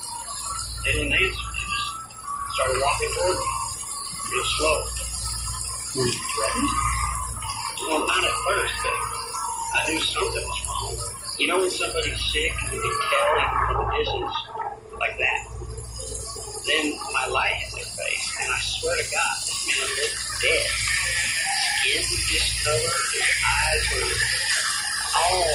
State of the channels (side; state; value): both; identical; correlation 1.00